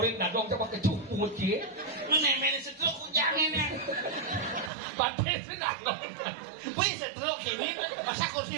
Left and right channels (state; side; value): drops out; left; at 4.7 s